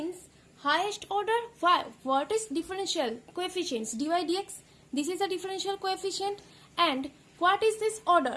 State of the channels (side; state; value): both; identical; correlation 1.00